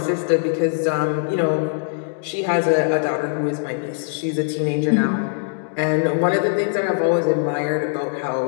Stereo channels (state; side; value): silent; right; digital silence